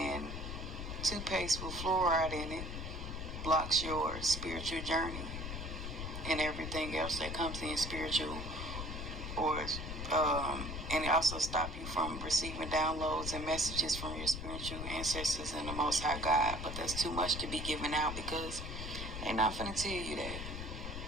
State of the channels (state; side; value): noise; left; rumble, 6 dB below the sound